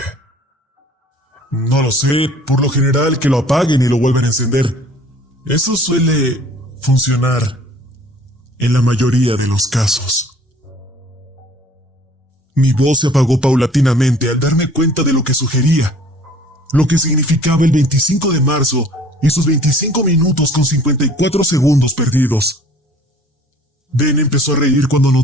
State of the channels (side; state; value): both; normal; correlation 0.52